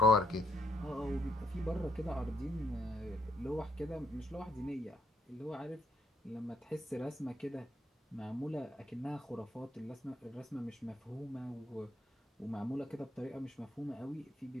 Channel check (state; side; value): normal; both; correlation 0.73